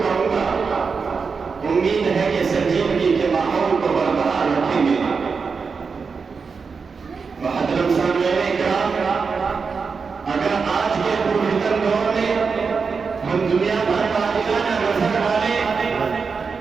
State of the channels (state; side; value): quieter; left; 5.2 dB